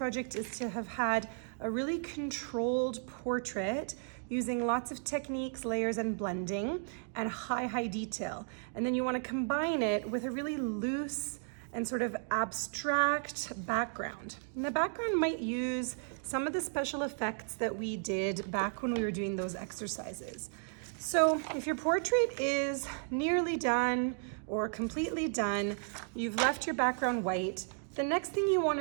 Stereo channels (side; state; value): left; silent; 55 dB below the other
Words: is to have had a really controlled portrait using lots of techniques, layers, and blending, and high detail. And then you wanna combine it with a really loose and sort of abstract background. And the background might use some of the special effects that we did back when we were doing those exercises. So if your portrait is nearly done or completely done, you've left your background white, the next thing you want